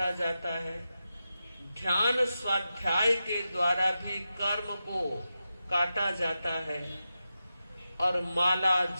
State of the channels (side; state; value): both; inverted; correlation -0.90